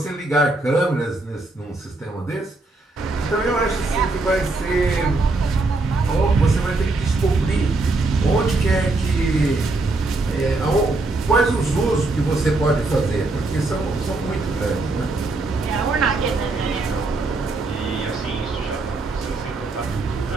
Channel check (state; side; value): quieter; left; 3.2 dB